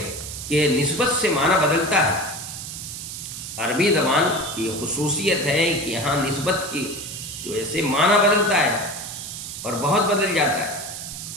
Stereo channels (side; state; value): right; noise; hiss, 9 dB below the sound